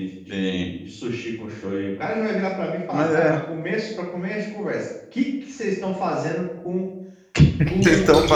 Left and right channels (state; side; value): identical; both; correlation 1.00